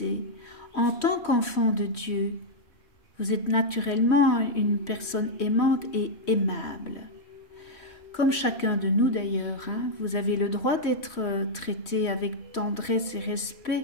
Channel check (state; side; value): late; right; 3.1 ms